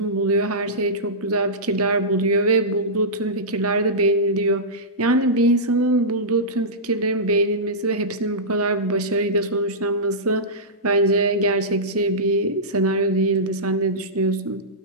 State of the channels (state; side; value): normal; both; correlation -0.15